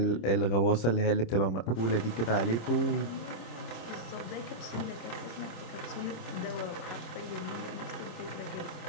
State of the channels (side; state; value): right; late; 26 ms